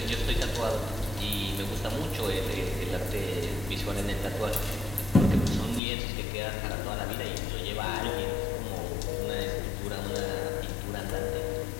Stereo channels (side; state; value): right; drops out; at 5.8 s